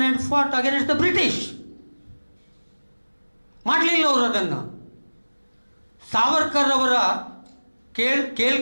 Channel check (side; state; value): both; inverted; correlation -1.00